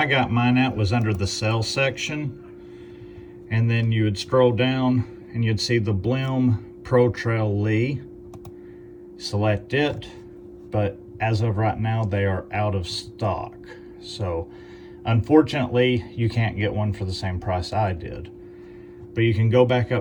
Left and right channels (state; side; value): identical; both; correlation 1.00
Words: got mine at was under the sales section, and then you would scroll down and you'd see the Blim Protrail LI. Select it, but as of right now they are out of stock. So unfortunately you can't get one for the same price I did. But you can go back